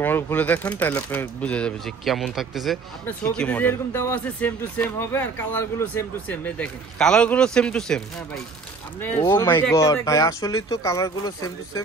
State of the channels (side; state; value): left; quieter; 4.3 dB